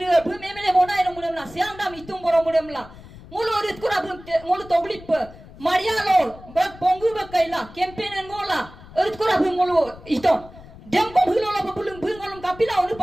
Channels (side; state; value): left; noise; rumble, 19 dB below the sound